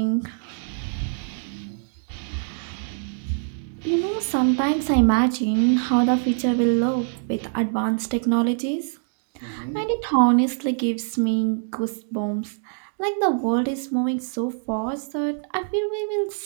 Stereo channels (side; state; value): left; silent; digital silence